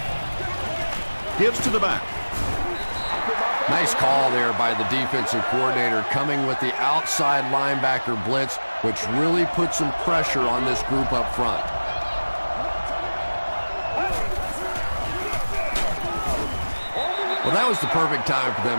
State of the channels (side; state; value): both; inverted; correlation -1.00